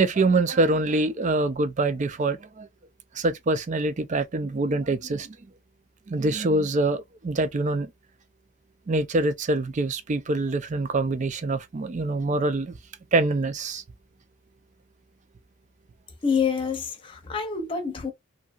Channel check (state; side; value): normal; both; correlation 0.39